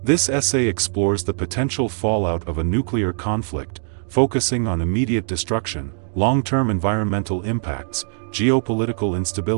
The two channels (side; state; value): left; silent; digital silence